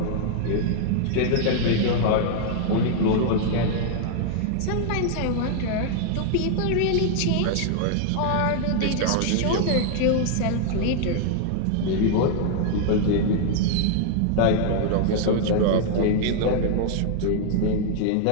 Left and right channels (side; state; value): both; different; correlation 0.00